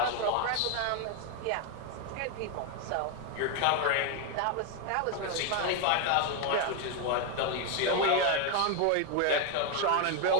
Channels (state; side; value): different; both; correlation 0.01